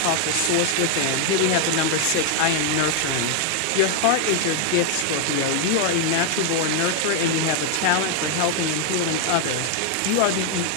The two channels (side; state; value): both; different; correlation 0.00